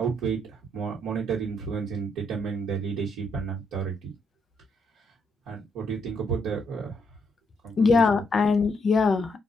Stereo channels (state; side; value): normal; both; correlation 0.75